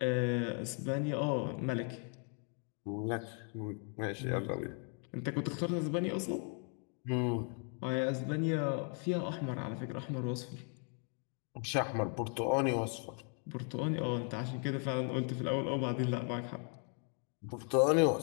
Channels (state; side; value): quieter; right; 39.8 dB